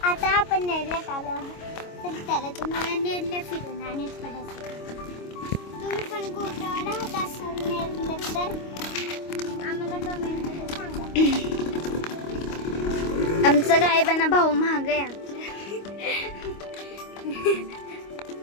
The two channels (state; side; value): late; right; 25 ms